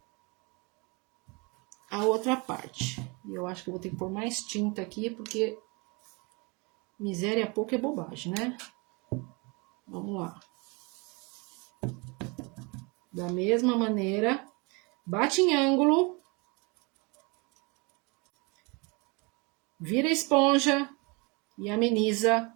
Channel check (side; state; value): left; quieter; 28.9 dB